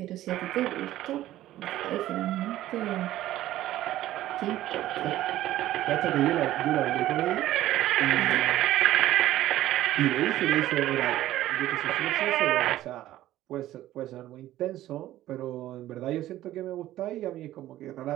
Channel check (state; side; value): quieter; left; 14.3 dB